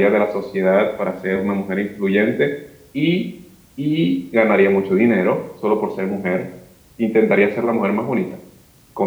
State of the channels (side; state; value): both; identical; correlation 1.00